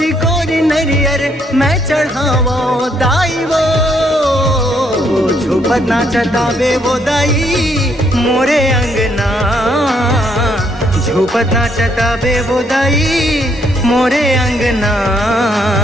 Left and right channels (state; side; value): normal; both; correlation 0.71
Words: कोरी नरियर मैं चढ़ावो दाई वो झुपत नाचता बे वो दाई मोरे अंगना झुपत नाचता बे वो दाई मोरे अंगना।